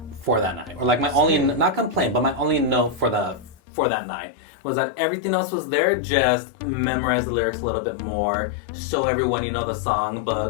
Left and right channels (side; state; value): right; drops out; at 3.6 s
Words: for that night. Or like my only, not complaint, but my only note for that night was that everything else was there, just memorize the lyrics a little bit more, show everyone you know the song,